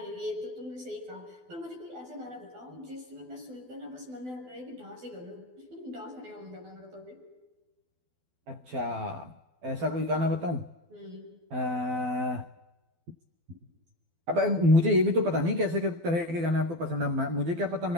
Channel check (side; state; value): left; late; 12 ms